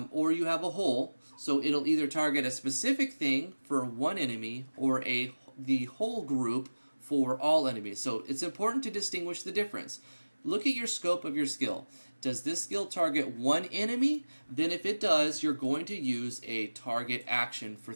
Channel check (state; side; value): inverted; both; correlation -1.00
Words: or you have a hole. So it'll either target a specific thing for one enemy, or the whole group for all enemies. So it's important to distinguish the difference. Look at your scope of your skill. Does this skill target one enemy? Then if it does, you're going to use a target action for